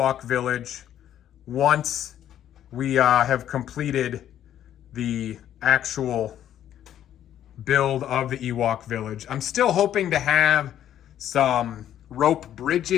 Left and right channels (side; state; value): right; quieter; 10.9 dB